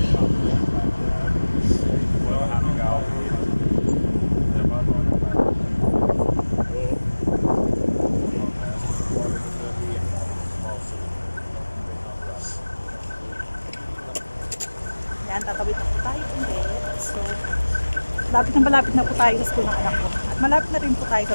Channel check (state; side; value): inverted; both; correlation -1.00